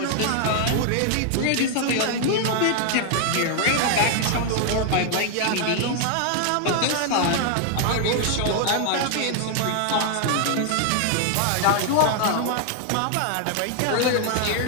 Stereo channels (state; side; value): different; both; correlation 0.00